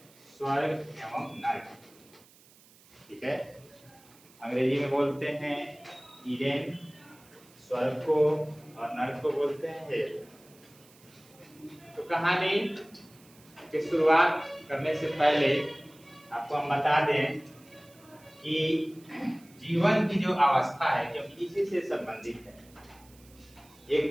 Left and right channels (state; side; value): noise; right; hiss, 26 dB below the sound